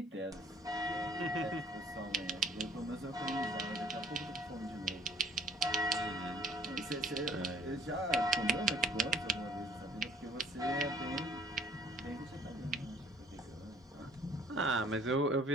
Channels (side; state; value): both; normal; correlation 0.56